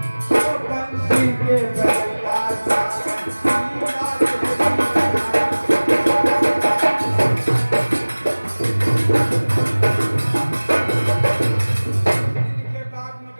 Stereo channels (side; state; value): both; inverted; correlation -1.00